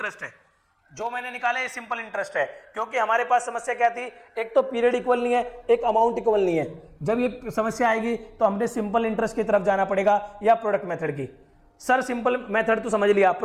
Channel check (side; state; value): both; identical; correlation 1.00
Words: है जो मैंने निकाला, ये सिंपल इंटरेस्ट है। क्योंकि हमारे पास समस्या क्या थी, एक तो पीरियड इक्वल नहीं है, एक अमाउंट इक्वल नहीं है। जब ये समस्या आएगी तो हमने सिंपल इंटरेस्ट की तरफ जाना पड़ेगा या प्रोडक्ट मेथड की। सर सिंपल मेथड तो समझ लिया,